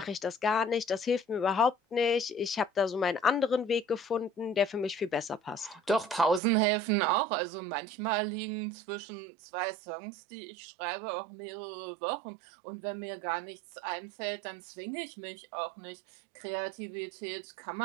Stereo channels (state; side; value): drops out; left; at 6.4 s